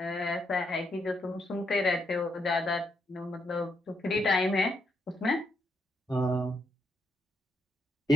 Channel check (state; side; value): normal; both; correlation 0.78